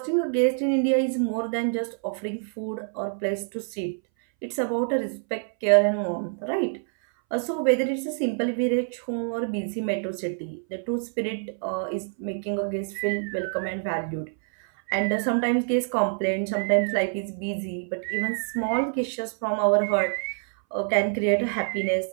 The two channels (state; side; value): silent; left; 61 dB below the other